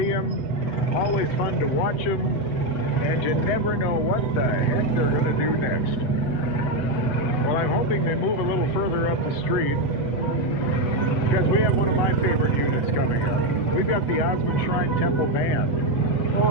them. Always fun to watch them. And you never know what the heck they're going to do next. Well, I'm hoping they move a little further up the street, because we have one of my favorite units coming up. We've got the Osmond Shrine Temple Band.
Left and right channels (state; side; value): late; right; 8.1 ms